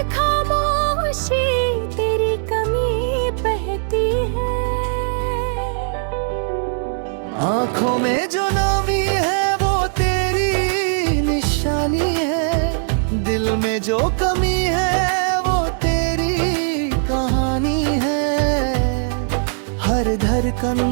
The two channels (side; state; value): left; silent; digital silence